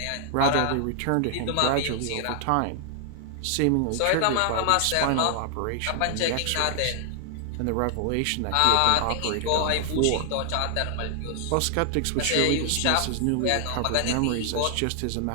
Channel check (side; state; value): both; different; correlation 0.00